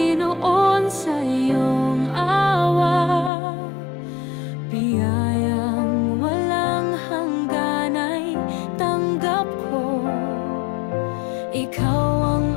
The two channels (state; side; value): drops out; right; at 3.3 s